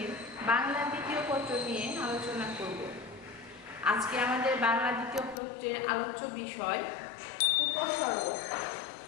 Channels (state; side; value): drops out; right; at 5.4 s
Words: বাংলা দ্বিতীয় পত্র নিয়ে আলোচনা করব। আজকে আমাদের বাংলা দ্বিতীয় পত্রের আলোচ্য বিষয় উপসর্গ।